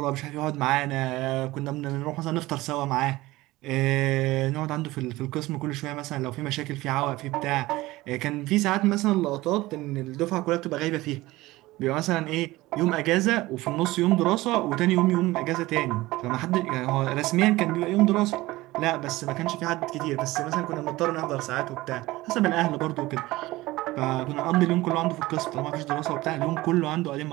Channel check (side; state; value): left; quieter; 18.8 dB